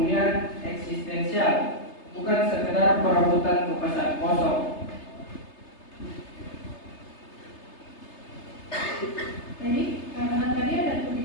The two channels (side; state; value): right; late; 3.3 ms